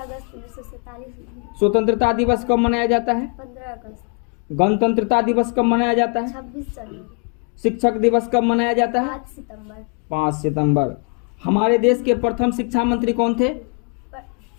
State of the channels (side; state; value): right; quieter; 35.5 dB